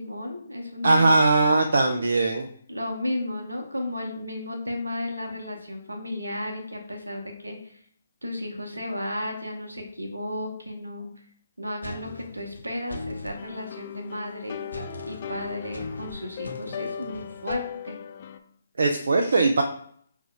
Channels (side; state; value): both; inverted; correlation -0.84